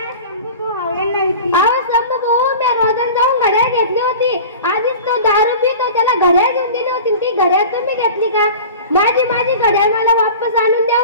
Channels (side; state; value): both; inverted; correlation -0.37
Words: शंभू भावांना विकली. अहो शंभू भाऊ, मी रोजन जाऊन घड्याळ घेतली होती. आधीच तो दारू पितो, त्याला घड्याळ घेऊन दिली होती. ती घड्याळ तुम्ही घेतली का? माझी घड्याळ मला वापस आणून